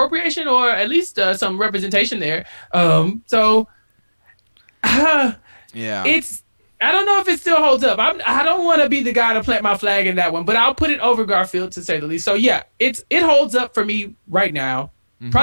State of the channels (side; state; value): both; inverted; correlation -1.00